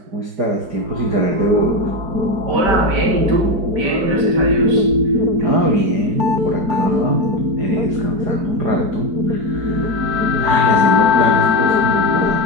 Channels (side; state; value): left; late; 5.2 ms